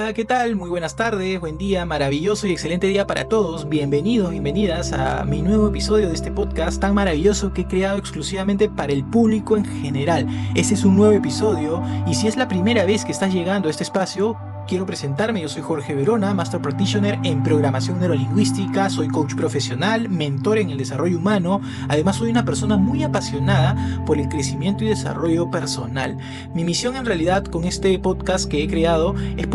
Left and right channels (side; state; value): both; identical; correlation 1.00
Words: ¿qué tal? Muy buenas tardes, buen día, maravilloso y excelente día para todos. Bienvenidos, bienvenidas a mi nuevo episodio de este podcast tan maravilloso que he creado exclusivamente para el público en general. Este es un nuevo episodio y si es la primera vez que estás llegando a este espacio, quiero presentarme. Yo soy Jorge Verona, Master Practitioner en Programación Neurolingüística, soy coach profesional, mentor en el desarrollo humano, además soy una persona muy apasionada por el crecimiento y desarrollo personal. Mi misión en realidad con este podcast que he creado es